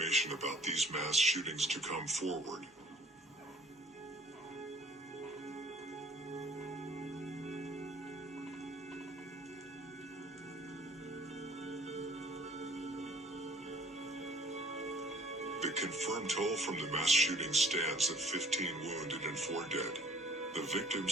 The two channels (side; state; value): both; normal; correlation 0.54